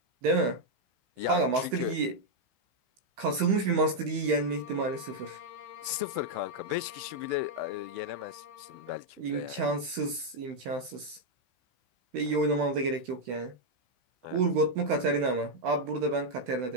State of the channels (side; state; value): left; late; 16 ms